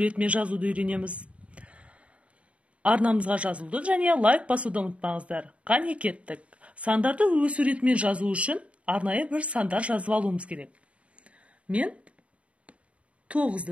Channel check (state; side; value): late; left; 0.063 ms